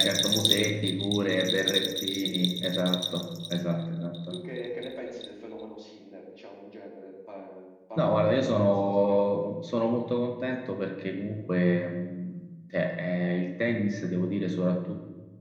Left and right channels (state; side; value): identical; both; correlation 1.00